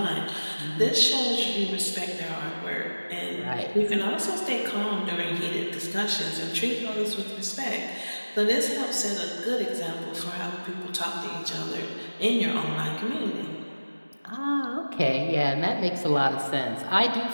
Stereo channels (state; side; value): inverted; both; correlation -1.00